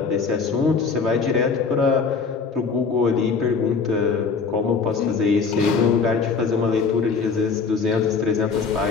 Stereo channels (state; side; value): quieter; right; 5.1 dB